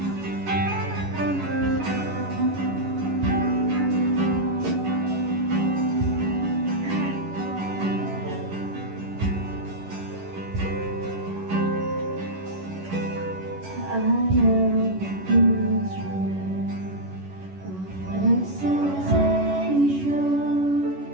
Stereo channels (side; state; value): left; late; 11 ms